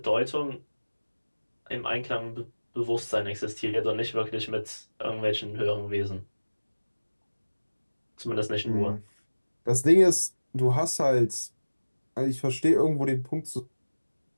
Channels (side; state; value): both; inverted; correlation -1.00